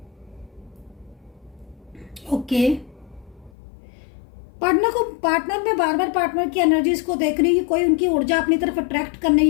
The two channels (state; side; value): drops out; right; at 3.5 s